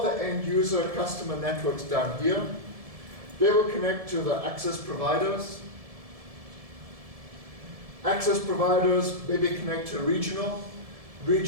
the end user customer networks down here. They will connect to the access providers. Access providers maybe connect to a regional.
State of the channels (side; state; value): left; late; 1.7 ms